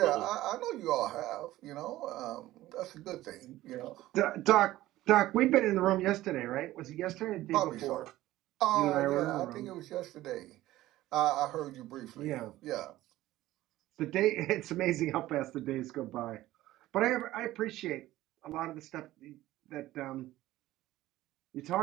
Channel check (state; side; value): quieter; left; 15.8 dB